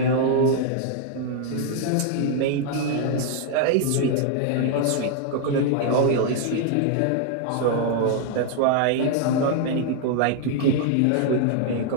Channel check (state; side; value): different; both; correlation 0.00